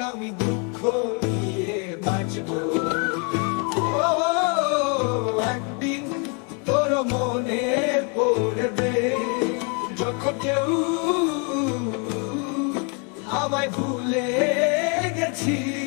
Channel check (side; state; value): right; quieter; 36.4 dB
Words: আমি দুঃখ নিয়ে বাঁচবো। একদিন তোর মনে পড়বে যখন কেউ আমায় ভুলে